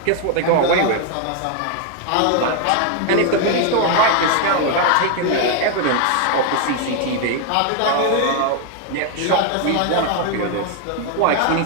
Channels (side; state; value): both; different; correlation 0.01